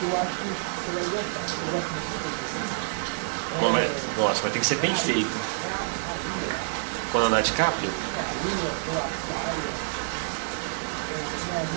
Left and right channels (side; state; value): left; silent; digital silence